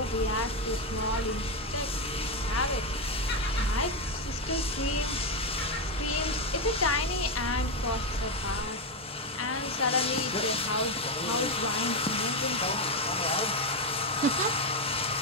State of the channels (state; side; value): normal; both; correlation 0.08